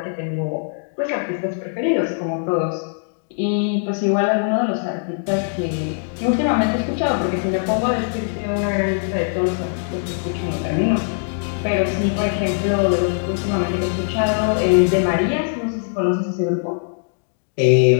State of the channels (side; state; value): right; silent; digital silence